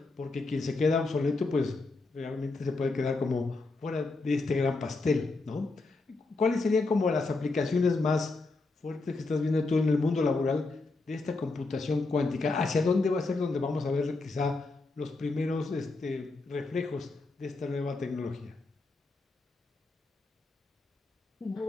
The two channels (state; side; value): quieter; right; 3.5 dB